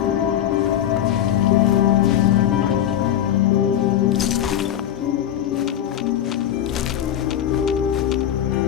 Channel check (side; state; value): right; quieter; 10.8 dB